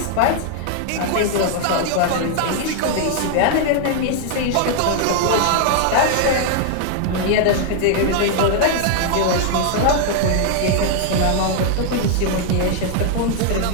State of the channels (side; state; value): both; different; correlation 0.00